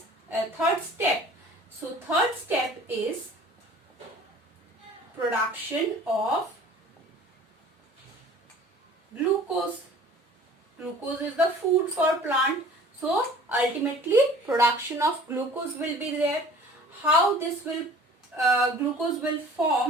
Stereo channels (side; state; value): both; normal; correlation 0.47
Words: third step. So third step is production of glucose. Glucose is the food for plant. So ultimately production of glucose will be there. How this will glucose will